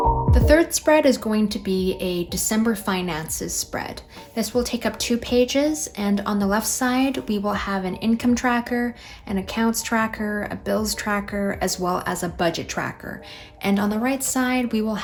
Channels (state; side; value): identical; both; correlation 1.00